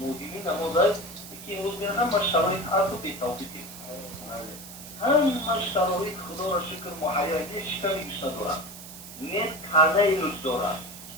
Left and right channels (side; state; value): right; noise; hiss, 14 dB below the sound